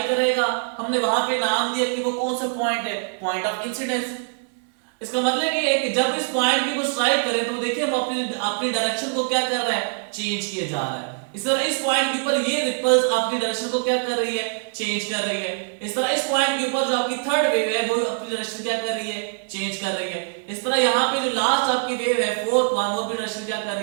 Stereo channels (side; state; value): left; silent; 63 dB below the other